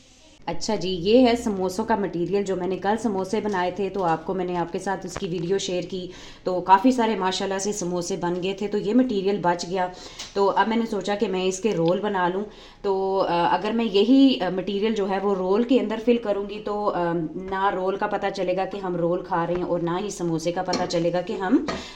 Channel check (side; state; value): both; identical; correlation 1.00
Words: अच्छा जी, ये है समोसों का मटेरियल। जो मैंने कल समोसे बनाए थे तो आपको मैंने आपके साथ उसकी वीडियो शेयर की। तो काफ़ी सारे माशाल्लाह से समोसे बन गए थे। तो ये मटेरियल बच गया। तो अब मैंने सोचा कि मैं इसके रोल बना लूँ। तो अगर मैं यही मटेरियल जो है वो रोल के अंदर फिल करूँगी तो ना रोल का पता चलेगा कि हम रोल खा रहे हैं और ना ही समोसे का पता चलेगा कि हम